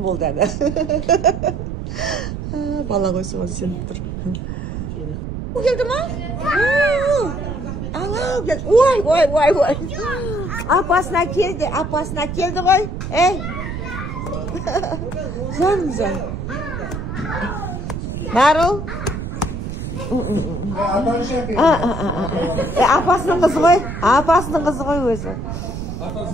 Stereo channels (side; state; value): right; noise; rumble, 6 dB below the sound